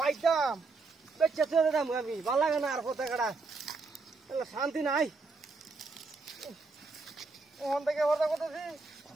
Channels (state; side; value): quieter; left; 3.9 dB